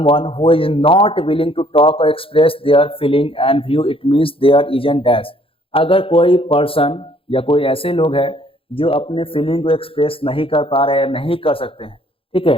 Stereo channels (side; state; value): right; late; 0.27 ms